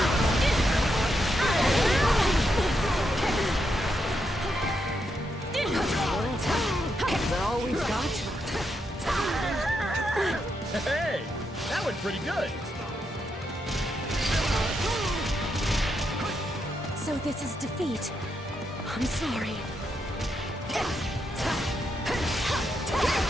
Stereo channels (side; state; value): both; normal; correlation 0.82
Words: Is that all we've got? Hey, that went pretty good. So this is defeat. I'm sorry.